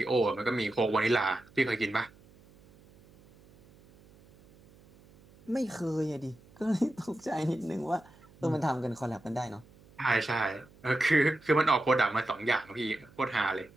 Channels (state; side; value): noise; right; hum, 26 dB below the sound